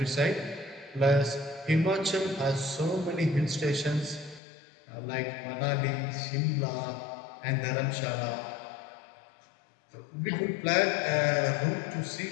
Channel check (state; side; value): drops out; right; at 4.4 s